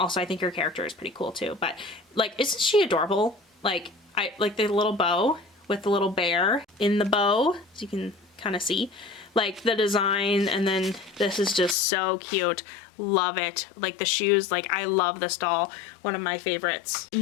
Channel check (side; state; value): right; drops out; at 11.8 s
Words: I think her character is pretty cool too. But like, isn't she adorable? Like, I like the little bow with the little bear in the bow, as you can kind of see, like the design, and then this is just so cute. Love it. Like the shoes, like I love this doll, one of my favorites.